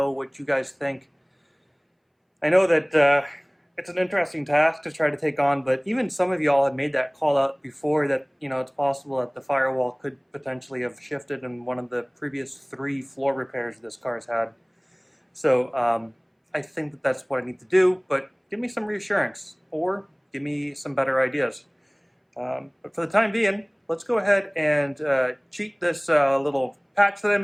what you guys think. I know that it's an interesting task to try to take on, but even some of y'all had made that call out before that, you know, it's possible that the firewall could potentially have shifted in one of the previous 3 floor repairs this car's had. So I think that that's what I need to do, but give me some reassurance or give me some better ideas. But for the time being, let's go ahead and cheat this little patch that I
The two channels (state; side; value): identical; both; correlation 1.00